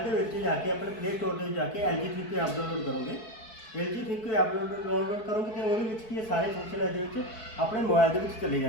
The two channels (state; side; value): late; right; 4.6 ms